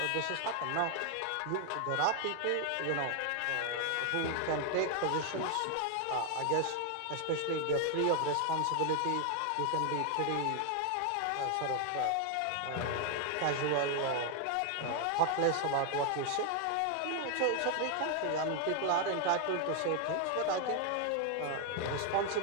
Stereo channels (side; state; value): both; different; correlation 0.01